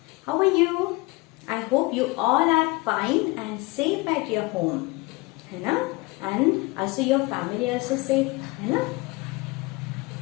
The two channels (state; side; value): quieter; right; 23.9 dB